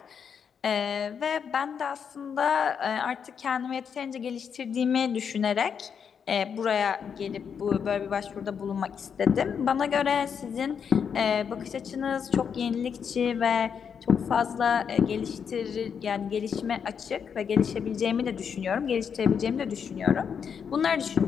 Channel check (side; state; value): right; quieter; 7.1 dB